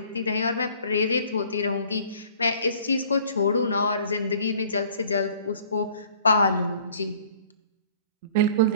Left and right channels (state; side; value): inverted; both; correlation -0.54